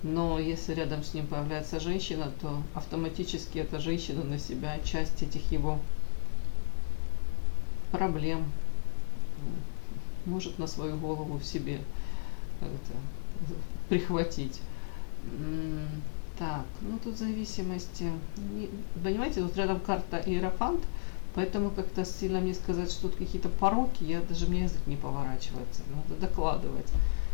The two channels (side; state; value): right; silent; 56 dB below the other